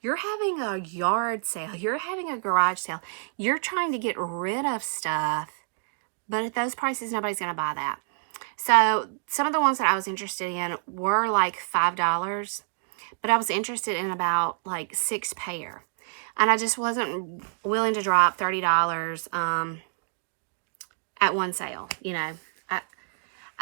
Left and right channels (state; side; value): silent; left; digital silence